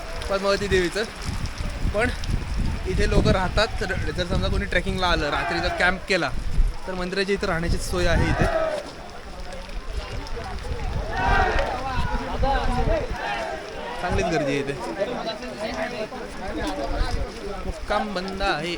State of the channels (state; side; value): identical; both; correlation 1.00